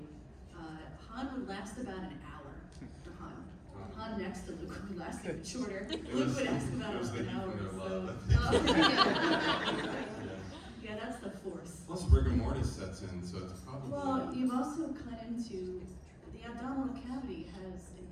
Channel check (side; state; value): both; identical; correlation 1.00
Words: Han would last about an hour for Han. Han next to Luke would last even shorter. Luke would last about an hour. Yeah, that's the force. Plus rigor mortis sets in, so it's probably... Well, you've also cut into, the abdominal cavity has